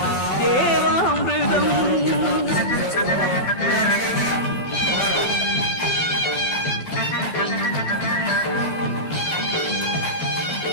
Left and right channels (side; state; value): right; late; 12 ms